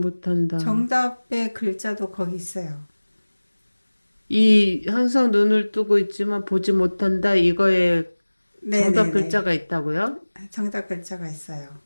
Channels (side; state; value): both; inverted; correlation -1.00